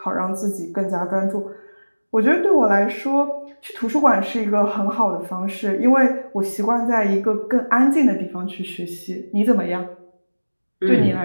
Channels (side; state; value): both; inverted; correlation -1.00